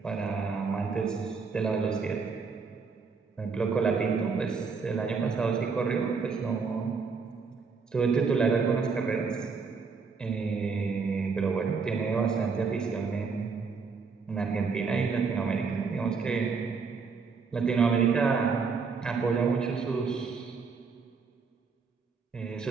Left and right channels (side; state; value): left; quieter; 5.1 dB